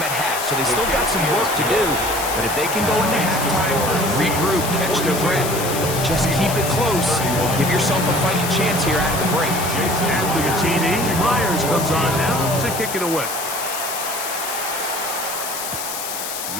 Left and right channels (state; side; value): noise; left; hiss, 6 dB below the sound